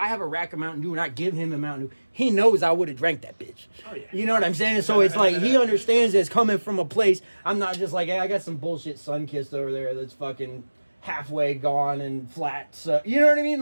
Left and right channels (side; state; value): both; inverted; correlation -1.00